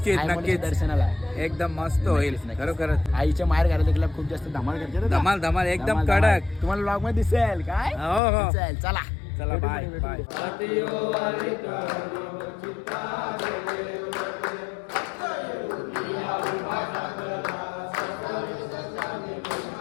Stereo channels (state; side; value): drops out; right; at 8.2 s